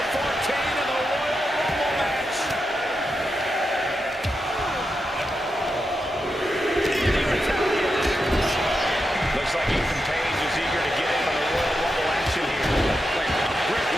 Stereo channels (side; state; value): both; normal; correlation 0.87